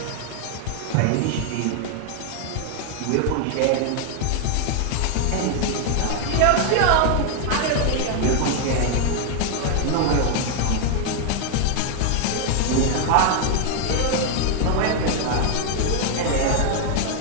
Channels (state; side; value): different; both; correlation 0.00